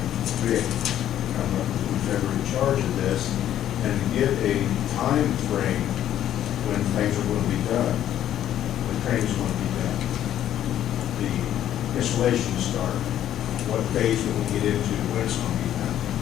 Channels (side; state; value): right; quieter; 11.4 dB